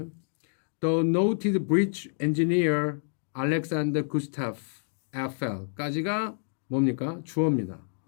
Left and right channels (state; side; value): silent; right; digital silence